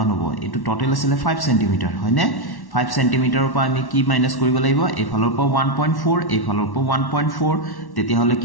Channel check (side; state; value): right; late; 1.1 ms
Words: হ'ব এটো টোটাল আছিল 5 cm হয়নে 5 cm ৰ পৰা আমি কি মাইনাস কৰিব লাগিব এফালৰ পৰা 1.4 এফালৰ পৰা 1.4 তেতিয়া হলে